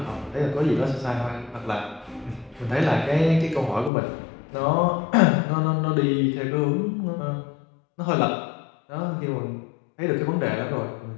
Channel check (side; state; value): right; drops out; at 3.9 s